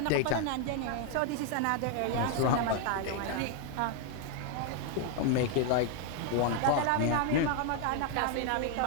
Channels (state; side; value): different; both; correlation 0.00